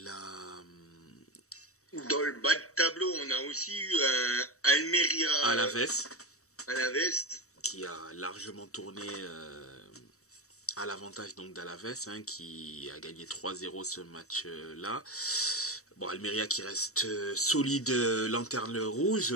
le bas de tableau, on a aussi eu un Almeria Alaves qui a largement tourné à l'avantage donc d'Alaves qui a gagné 3-0 ce match-là. Bon, Almeria qui reste solide lanterne rouge,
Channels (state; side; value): late; right; 0.65 ms